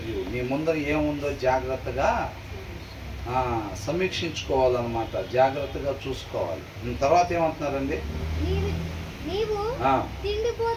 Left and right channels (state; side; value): identical; both; correlation 1.00